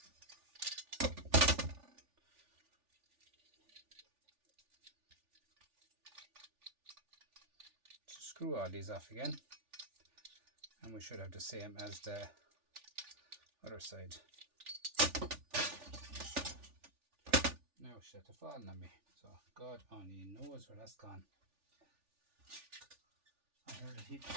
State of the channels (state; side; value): late; left; 3.4 ms